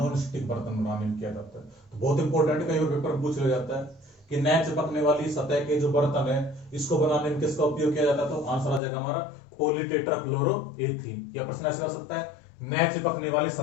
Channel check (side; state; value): right; drops out; at 8.8 s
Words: स्टिक बर्तन बनाने में किया जाता है। तो बहुत इंपॉर्टेंट, कई बार पेपर पूछ लिया जाता है कि न चिपकने वाली सतह के जो बर्तन है इसको बनाने में किसका उपयोग किया जाता है, तो आंसर आ जाएगा हमारा पॉलीटेट्राक्लोरोएथीन। या प्रश्न ऐसा हो सकता है, न चिपकने वाली